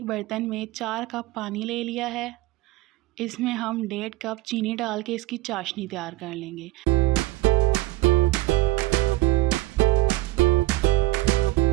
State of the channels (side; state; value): left; quieter; 18.3 dB